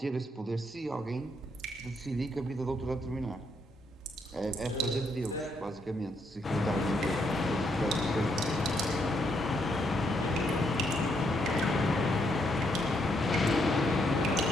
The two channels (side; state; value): both; normal; correlation 0.75